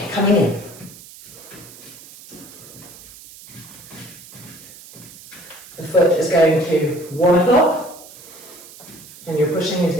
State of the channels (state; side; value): noise; right; hiss, 19 dB below the sound